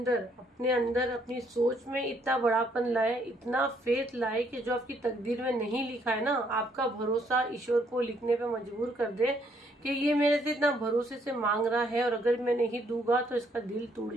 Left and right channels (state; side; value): normal; both; correlation 0.69